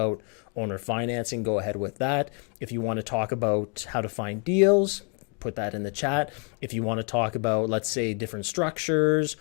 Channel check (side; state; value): right; quieter; 36.8 dB